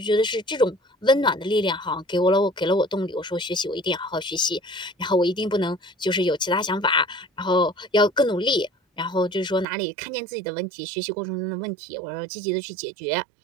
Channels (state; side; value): drops out; left; at 9.7 s